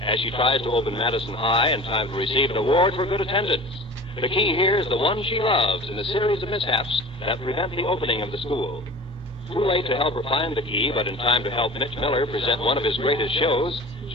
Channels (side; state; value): both; normal; correlation 0.39